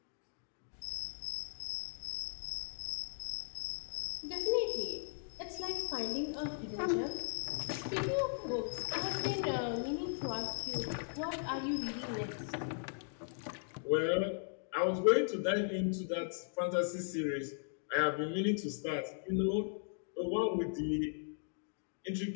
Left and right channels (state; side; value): silent; right; digital silence